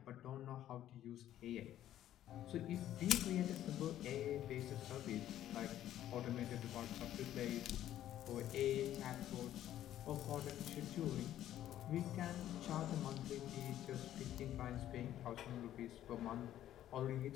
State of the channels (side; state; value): right; quieter; 12.2 dB